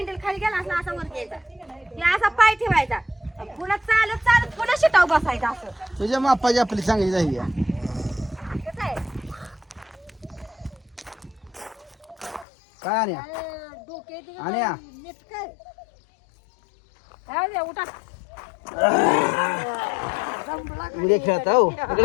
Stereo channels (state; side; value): drops out; right; at 12.5 s